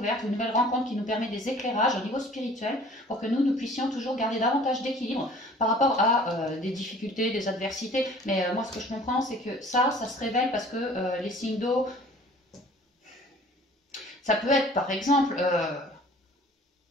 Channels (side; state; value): both; normal; correlation 0.49